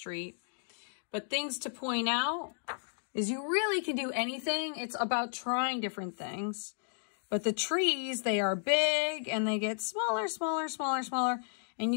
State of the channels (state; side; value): silent; right; digital silence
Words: But things to point out is you really can do anything. It's about trying different things. But the trees, they are big and they get smaller, smaller, smaller, smaller. And